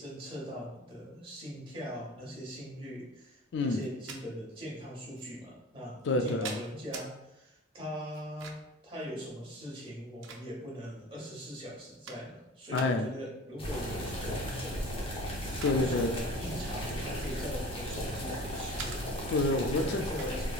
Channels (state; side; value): normal; both; correlation 0.39